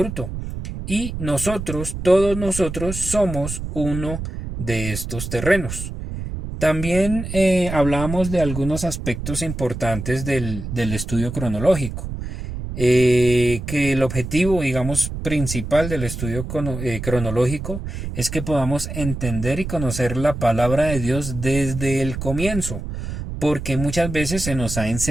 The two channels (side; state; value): right; noise; rumble, 7 dB below the sound